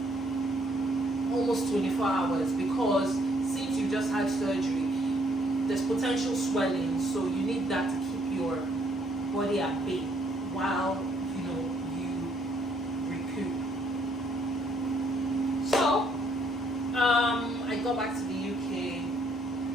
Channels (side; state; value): both; normal; correlation 0.67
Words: almost 24 hours, because since you just had surgery, there's potential swelling, so you need that to keep your body at bay while you recoup. So I got back to the UK.